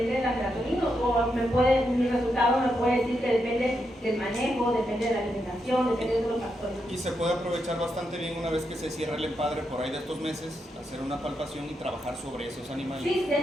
de la melatonina, o mi resultado me puede decir que depende del manejo, depende de la alimentación, depende de otros factores. Y se puede aprovechar bastante bien una vez que se cierra el empadre por ahí de estos meses, hacer una palpación y trabajar sobre esos animales. Sí, de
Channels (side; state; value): both; normal; correlation 0.83